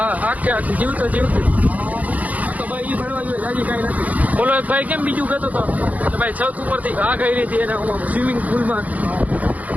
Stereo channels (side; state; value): left; late; 0.075 ms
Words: આખી જીવતો જીવતી. તો ભાઈ એ ફરવા જોઈએ જાજી કાંઈ નથી. બોલો એક ભાઈ કેમ બીજું કહેતો હતો કે ભાઈ છત ઉપરથી ઘા કરી હતી એને સ્વિમિંગ પુલમાં.